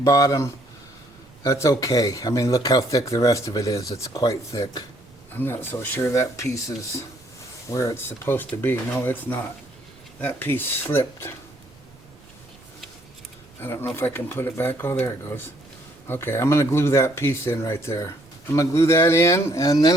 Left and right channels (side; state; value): right; noise; rumble, 27 dB below the sound